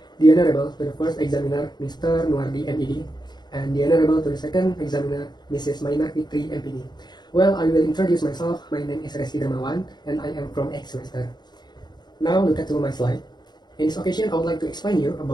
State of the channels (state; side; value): late; right; 0.21 ms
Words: The Honorable to the first examiner, Mr. Nuardi MED, and the Honorable to the second examiner, Mrs. Maina Fitri MPD. Well, I will introduce myself. My name is Rezki Dermawan, and I am from X semester. Now look at my slide. In this occasion, I would like to explain you